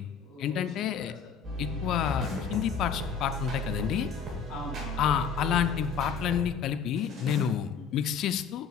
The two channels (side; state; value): right; quieter; 6.5 dB